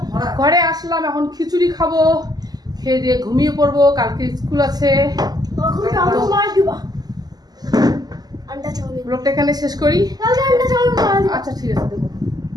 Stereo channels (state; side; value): late; left; 0.19 ms